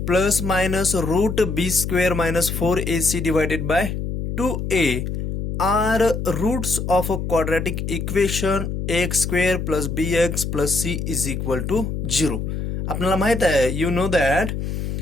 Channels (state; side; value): noise; left; hum, 4 dB below the sound